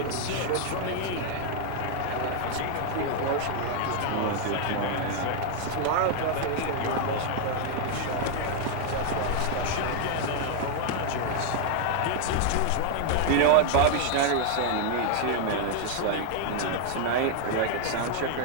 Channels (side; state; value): both; different; correlation 0.00